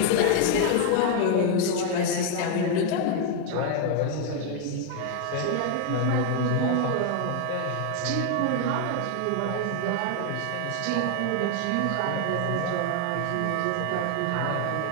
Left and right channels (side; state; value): both; different; correlation 0.00